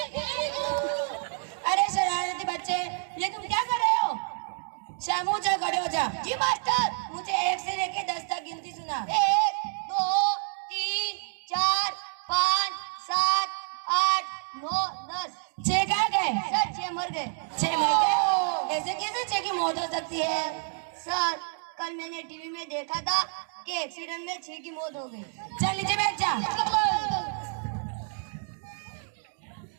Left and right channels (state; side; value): silent; left; 59 dB below the other